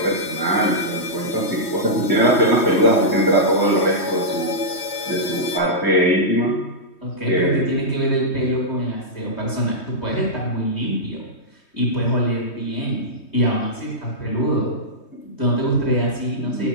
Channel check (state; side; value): late; right; 3.2 ms